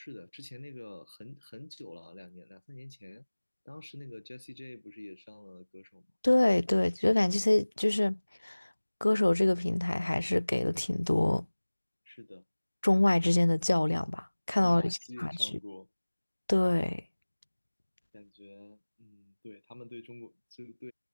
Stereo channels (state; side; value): inverted; both; correlation -1.00